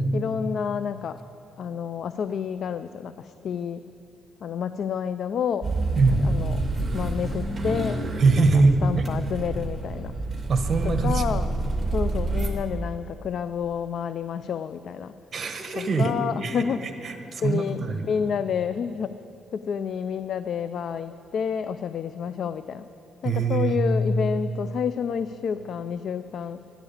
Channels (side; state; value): both; normal; correlation 0.77